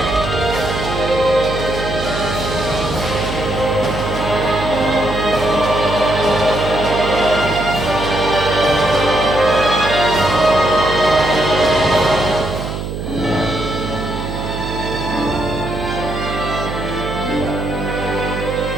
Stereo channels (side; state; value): right; noise; hum, 6 dB below the sound